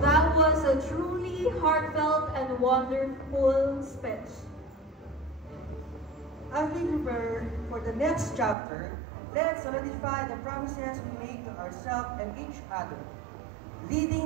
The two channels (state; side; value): drops out; left; at 8.6 s